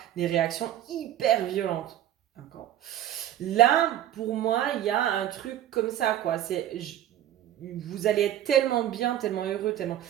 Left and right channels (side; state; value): left; quieter; 12.0 dB